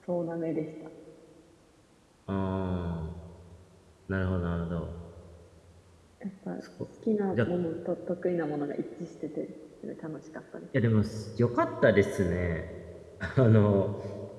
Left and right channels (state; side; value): identical; both; correlation 1.00